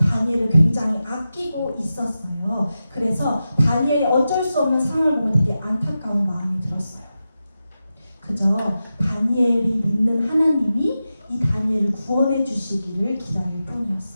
굉장히 아끼고 있었어요. 그래서 다니엘이 어쩔 수 없는 상황을 보면 되게 안타까운 마음이 들었어요. 그저 다니엘이 믿는 하나님이 이 다니엘을 구원해 주시기를 기다릴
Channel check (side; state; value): both; inverted; correlation -0.92